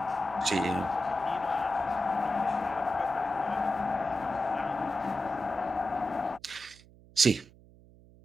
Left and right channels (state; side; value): noise; right; hum, 24 dB below the sound